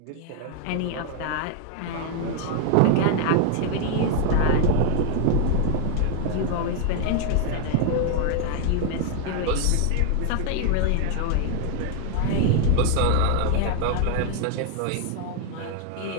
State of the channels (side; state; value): both; different; correlation 0.00